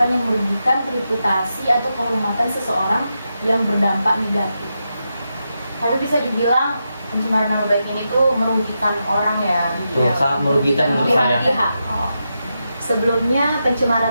yang merugikan reputasi atau kehormatan seseorang yang berdampak negatif. Tapi bisa dibilang pencemaran nama baik ini tuh merugikan orang ya. Sangat merugikan menurut saya. Pihak. Oh. Sebelumnya,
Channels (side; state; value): both; inverted; correlation -0.87